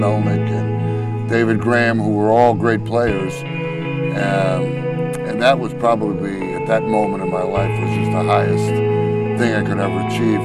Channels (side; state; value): both; identical; correlation 1.00